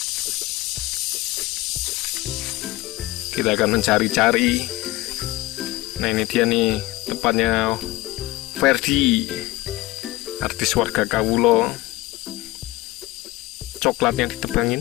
Kita akan mencari-cari. Nah, ini dia nih tempatnya Ferdi, artis warga Kawulo. Coklatnya ditebangin.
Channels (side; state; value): right; quieter; 19.2 dB